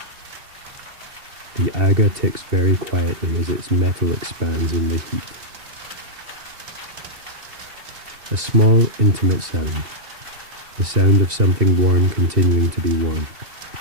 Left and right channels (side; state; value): left; late; 2.7 ms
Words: The Aga ticks very quietly as its metal expands in the heat. A small, intimate sound. The sound of something warm continuing to be warm,